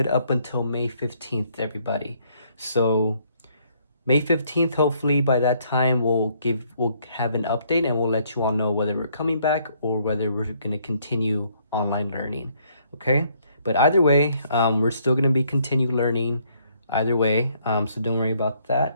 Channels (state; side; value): inverted; both; correlation -0.68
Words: up until May 15th, everybody. So May 15th, hopefully by that time we'll have an update and we'll let you all know whether we're coming back or whether we're gonna continue online learning. Okay? But either way, we're still gonna be continue learning either way. So don't worry about